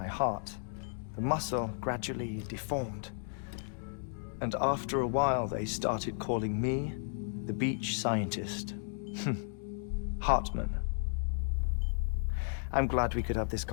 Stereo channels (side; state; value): right; silent; digital silence